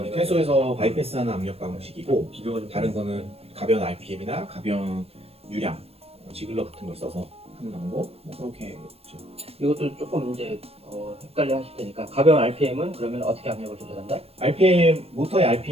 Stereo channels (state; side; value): late; left; 0.29 ms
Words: 퇴소에서 바이패스하는 압력 방식이고 비교가 좀 다른 거는 가변 RPM이나 가변 유량, 지글러 같은 걸 써서 한 정도 뭐 그렇게 있죠. 이것도 조금 이제 헷갈려 하실 테니까 가벼운 RPM은 그러면 어떻게 압력을 조절한다? RPM 모터의